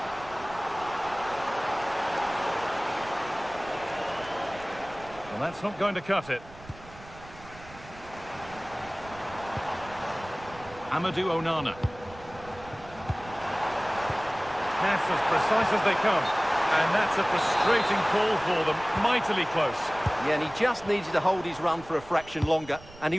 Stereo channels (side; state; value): right; noise; rumble, 19 dB below the sound